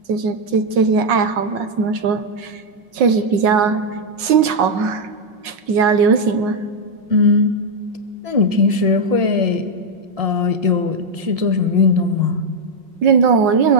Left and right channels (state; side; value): late; left; 5.5 ms